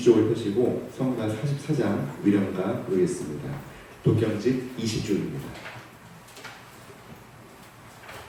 펴시고 성가 44장 위령가 부르겠습니다. 도경집 20쪽입니다.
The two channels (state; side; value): identical; both; correlation 1.00